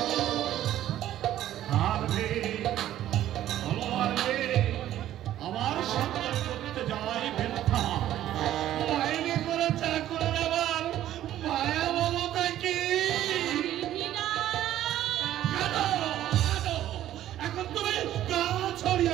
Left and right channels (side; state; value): left; quieter; 12.7 dB